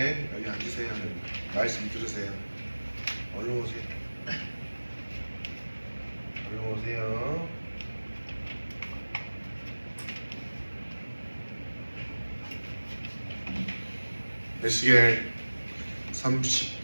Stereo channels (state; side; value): inverted; both; correlation -1.00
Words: 여기 앉으세요. 말씀 들으세요. 얼른 오세요. 얼른 오세요. 에스겔